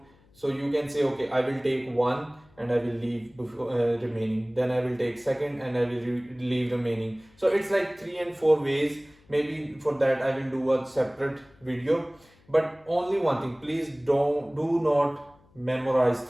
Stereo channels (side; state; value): left; noise; hum, 30 dB below the sound